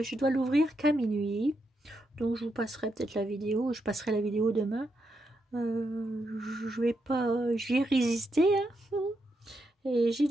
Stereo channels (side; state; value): both; normal; correlation 0.82